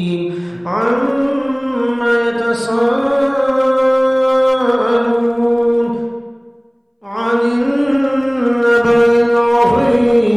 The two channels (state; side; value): identical; both; correlation 1.00